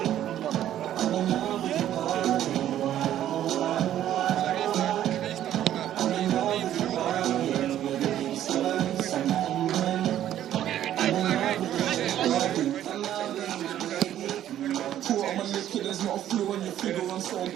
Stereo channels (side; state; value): left; quieter; 11.7 dB